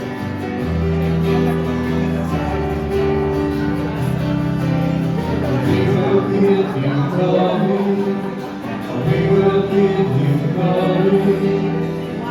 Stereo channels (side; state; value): both; identical; correlation 1.00